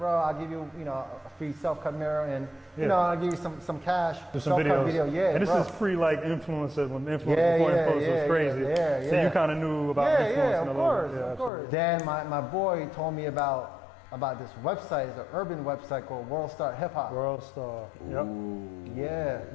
I'll give you, a free self-cut mirror, and I'll give you some cash. Do some self-cut videos. video. Yeah, and this bro. is pre like influencers when influencers before Yeah, influencers was crazy. yeah. So you kind of knew about influencing Yeah, a of little course, bit. Yeah, of course. absolutely. Then my boy told me about this website. It's an urban website called World Star Hip Hop. World Star. Yep. Yeah.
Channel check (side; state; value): right; drops out; at 11.5 s